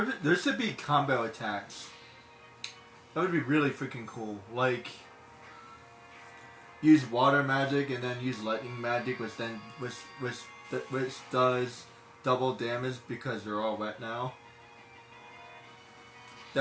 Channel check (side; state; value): both; identical; correlation 1.00